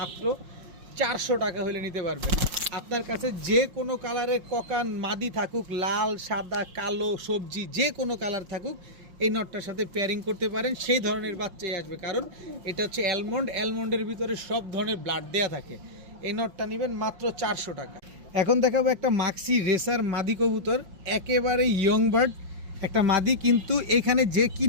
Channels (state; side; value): late; left; 5.6 ms